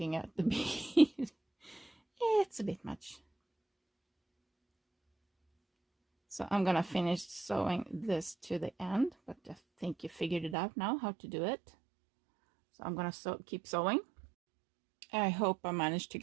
at the bead. It's a bit much. So I'm gonna finish sewing this to the end, but I think you figured it out now how to do it. So I'm gonna keep sewing. I hope I managed to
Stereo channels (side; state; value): left; drops out; at 10.6 s